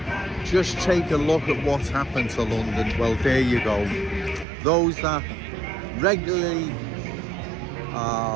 just take a look at what's happened to London. Well, there you go. Those that regularly,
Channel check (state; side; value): drops out; left; at 4.5 s